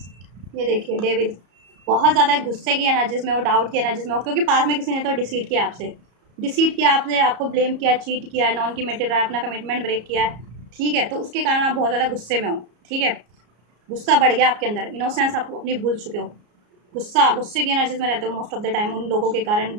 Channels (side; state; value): left; late; 34 ms